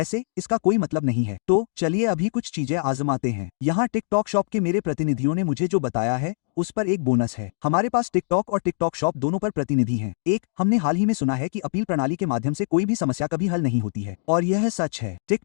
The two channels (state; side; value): silent; right; digital silence